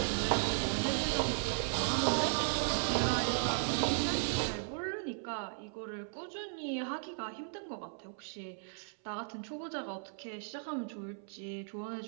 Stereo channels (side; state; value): left; silent; 54 dB below the other